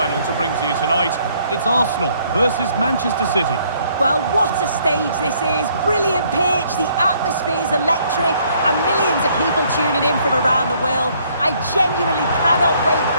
to bring to you tonight. It's Arsenal versus Manchester City. Well, what a stage this is. Brilliant pitch, the atmosphere's electric, and millions of people tuning in from around the world. I genuinely cannot wait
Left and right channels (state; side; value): inverted; both; correlation -0.65